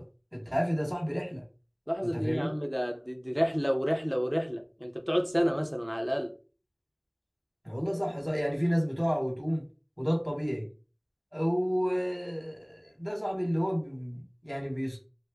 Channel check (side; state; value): both; identical; correlation 1.00